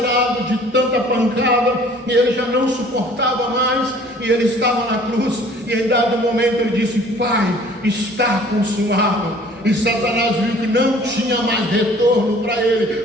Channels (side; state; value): both; normal; correlation 0.52